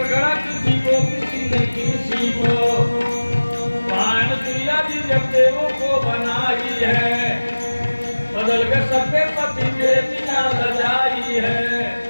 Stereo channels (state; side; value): inverted; both; correlation -1.00